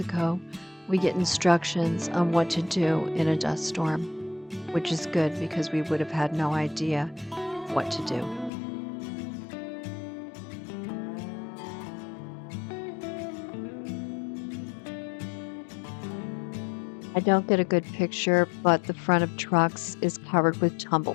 we get instructions on what to do in a dust storm, which is good because we would have had no idea what to do. I don't get a good picture, but the front of trucks is covered with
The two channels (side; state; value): right; drops out; at 8.5 s